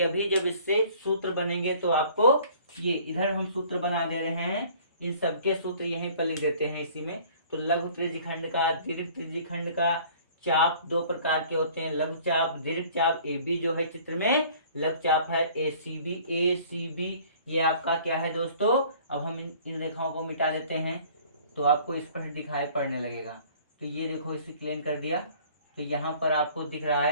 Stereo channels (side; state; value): both; inverted; correlation -0.52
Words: अभी जब इससे सूत्र बनेंगे तो आपको, ये इधर हम सूत्र बना दे रहे हैं, इन सबके सूत्र यहीं पर लिख देते हैं इसी में। तो लघु त्रिज्यखंड का, दीर्घ त्रिज्यखंड का चाप दो प्रकार के होते हैं, लघु चाप, दीर्घ चाप। AB जो है चित्र में लघु चाप है, ACB ये आपका क्या है दोस्तों? अब हम इन रेखाओं को मिटा देते हैं तो आपको स्पष्ट दिखाई पड़ने लगेगा। तो ये देखो, इसे क्लीन कर दिया तो यहाँ पर आपको दिख रहा